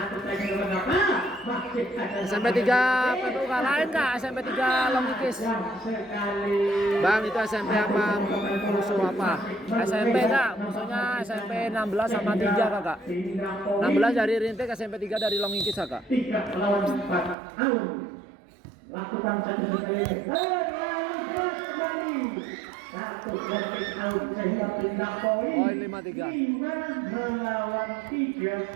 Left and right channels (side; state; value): left; drops out; at 17.4 s